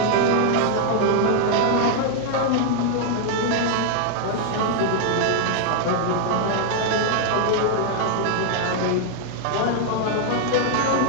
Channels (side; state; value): both; different; correlation 0.00